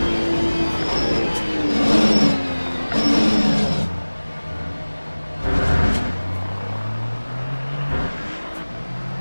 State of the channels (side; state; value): both; inverted; correlation -1.00